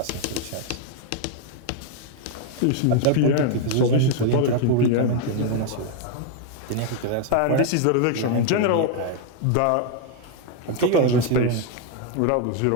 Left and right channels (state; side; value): different; both; correlation 0.00